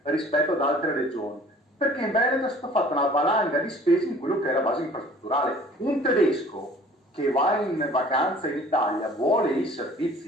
rispetto ad altre regioni, perché in Veneto è stata fatta una valanga di spese in quello che è la base infrastrutturale. Un tedesco che va in vacanza in Italia vuole i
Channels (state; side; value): normal; both; correlation 0.50